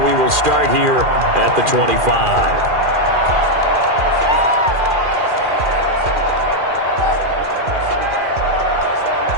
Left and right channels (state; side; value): late; left; 2.4 ms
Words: will start here at the 25.